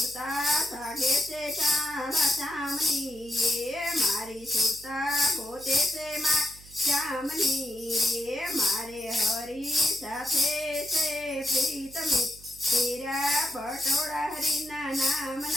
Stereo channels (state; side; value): noise; right; hum, 21 dB below the sound